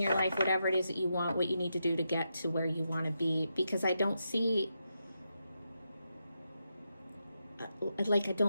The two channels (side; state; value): both; inverted; correlation -0.85